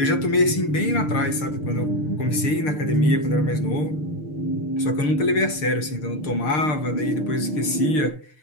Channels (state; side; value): late; right; 6.6 ms